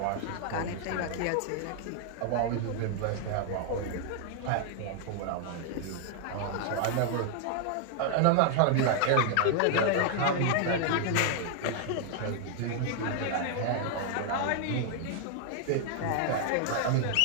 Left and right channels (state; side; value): different; both; correlation 0.00